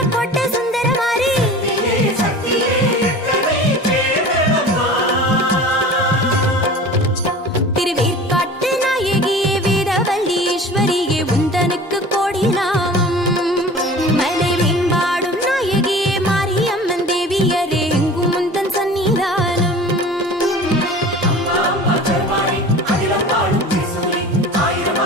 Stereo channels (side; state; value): both; normal; correlation 0.39